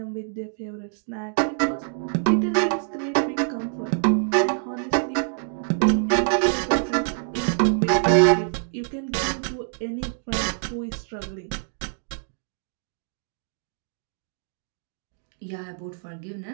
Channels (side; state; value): left; silent; digital silence